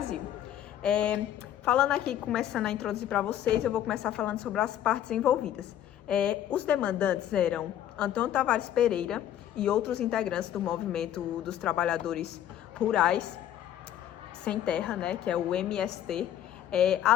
Falando aqui, começando a introduzir para vocês, eu vou começar falando sobre as partes envolvidas. Os demandantes eram Antônio Tavares Pereira e outros integrantes do movimento dos trabalhadores rurais sem terra, né, que é o MST,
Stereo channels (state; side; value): quieter; right; 11.2 dB